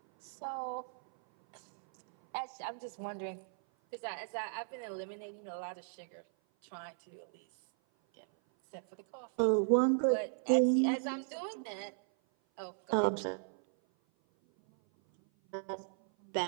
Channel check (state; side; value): silent; left; 54 dB below the other